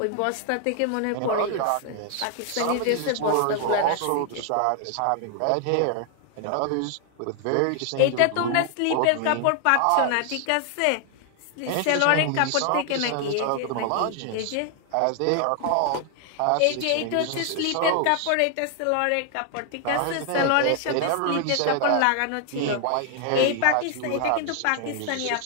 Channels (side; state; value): both; different; correlation 0.00